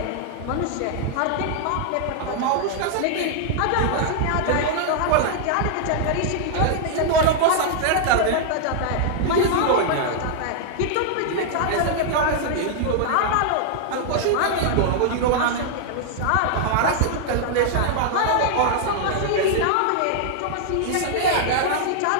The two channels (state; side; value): different; both; correlation -0.01